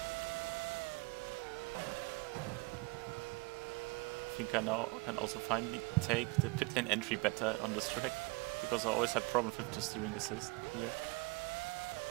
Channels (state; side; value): quieter; left; 26.5 dB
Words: I think I now can also finally take the pit lane entry better on this track, because I always had problems with the steering assist here.